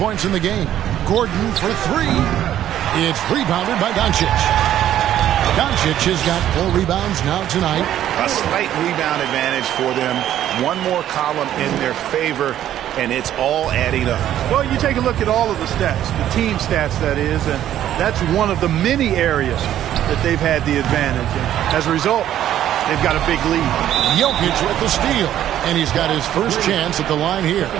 in the game. Gordon for 3. It's rebounded by Doncic. Doncic has got 4 rebounds now tonight. A slight rebound advantage for them. One more column in their favor, and it's all adding up. Well, you take a look at all of the stats, the team stats, that is, and that's one of the many areas that they've had the advantage. And as a result, they've got a big lead. Jokic with the steal, and he's got his first chance at the line here.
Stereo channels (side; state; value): left; quieter; 11.6 dB